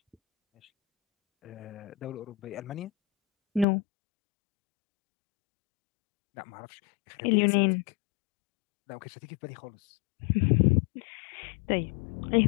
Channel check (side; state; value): right; drops out; at 3.7 s